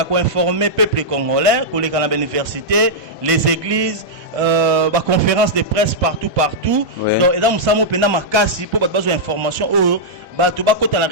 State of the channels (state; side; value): normal; both; correlation -0.08